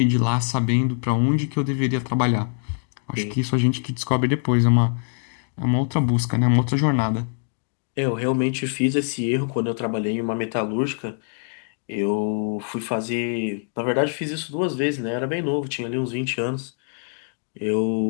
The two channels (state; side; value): silent; right; 62 dB below the other